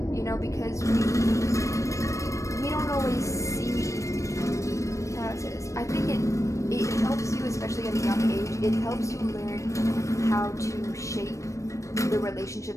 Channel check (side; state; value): right; late; 0.15 ms